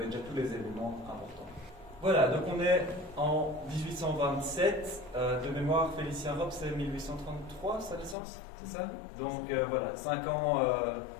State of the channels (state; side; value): drops out; right; at 8.2 s